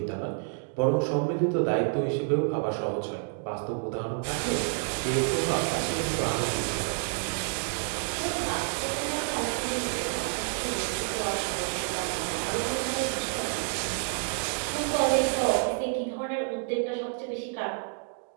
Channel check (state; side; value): silent; left; 55 dB below the other